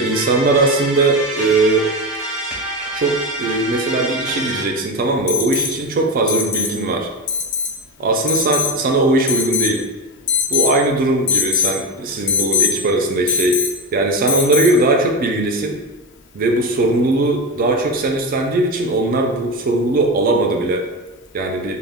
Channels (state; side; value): normal; both; correlation 0.19